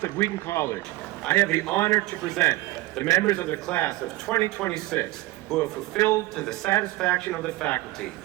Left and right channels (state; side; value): quieter; left; 18.2 dB